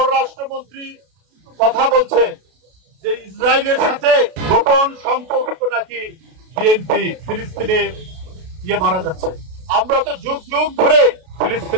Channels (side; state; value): left; late; 32 ms